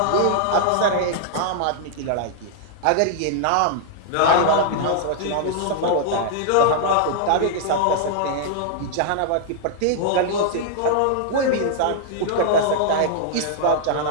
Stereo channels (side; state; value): both; different; correlation -0.01